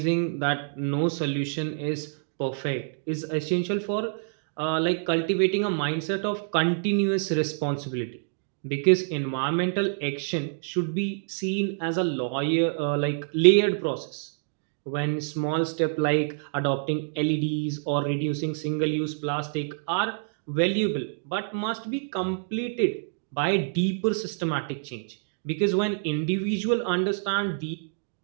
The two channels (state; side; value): silent; left; digital silence